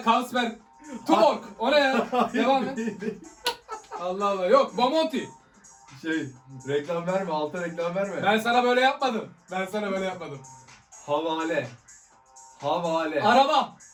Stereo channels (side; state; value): both; identical; correlation 1.00